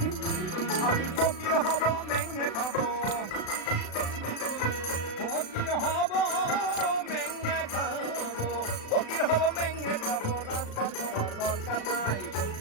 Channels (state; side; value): late; right; 36 ms